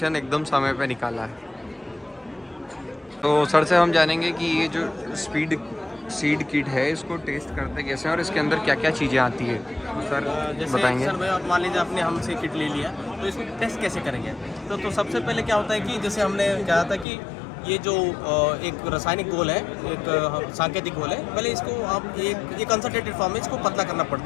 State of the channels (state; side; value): drops out; right; at 17.1 s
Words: एकदम समय पे निकाला है। तो सर से हम जानेंगे कि ये जो सीड किट है इसको टेस्ट करते कैसे हैं और इसके अंदर क्या क्या चीज़ें आती है, सर जैसे बताएंगे। सर भाई आप मान लीजिए आपने हमसे किट ले लिया तो इसको टेस्ट कैसे करेंगे। तो सबसे पहले क्या होता है कि जैसे हमने कहा था कि ये जो एक रासायनिक घोल है, एक सांकेतिक घोल है, पहले इसको आप एक कंसंट्रेटेड फॉर्म में इसको पतला करना